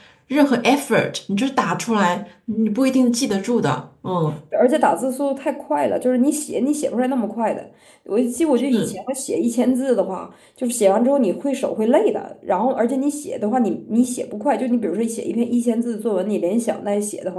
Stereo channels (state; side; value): identical; both; correlation 1.00